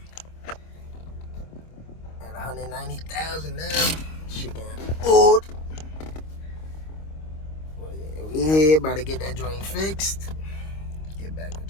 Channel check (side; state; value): right; late; 26 ms